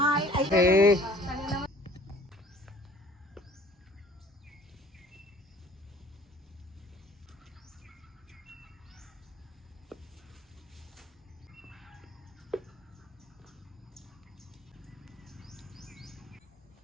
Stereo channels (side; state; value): both; normal; correlation 0.52